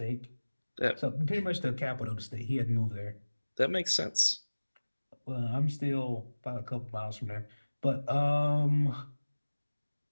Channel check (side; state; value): both; inverted; correlation -1.00